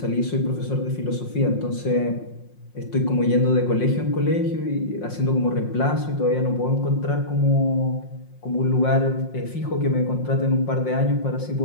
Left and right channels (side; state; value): right; late; 5.6 ms